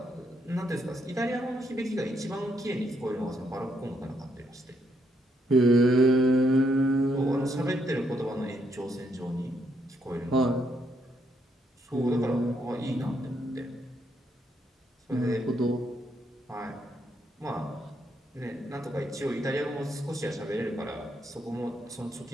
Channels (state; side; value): normal; both; correlation 0.75